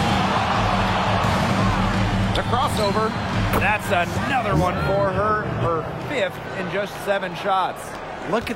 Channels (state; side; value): identical; both; correlation 1.00